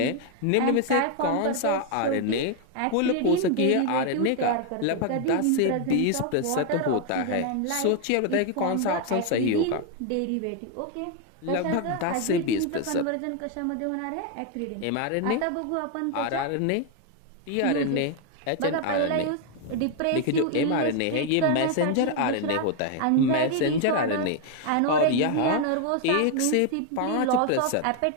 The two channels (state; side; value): different; both; correlation 0.01